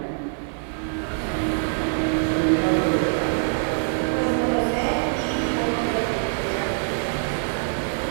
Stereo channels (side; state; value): left; silent; digital silence